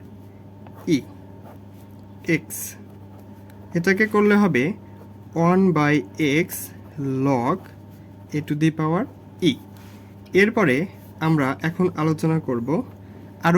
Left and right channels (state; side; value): identical; both; correlation 1.00